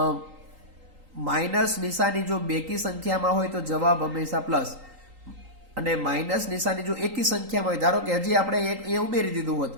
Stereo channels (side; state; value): left; late; 3.8 ms